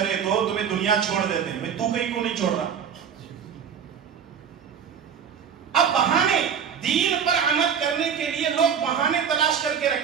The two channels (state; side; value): quieter; left; 7.4 dB